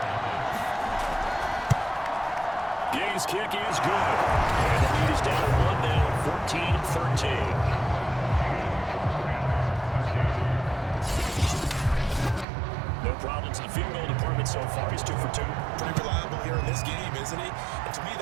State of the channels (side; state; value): left; drops out; at 12.5 s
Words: Gay's kick is good. And the lead is down 1 now, 14-13. No problems in the field goal department so far. He's 2 for 2. Pretty reliable here in this game, isn't he? And to me,